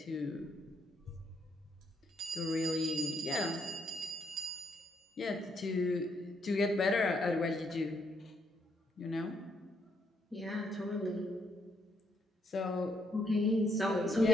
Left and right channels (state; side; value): normal; both; correlation 0.74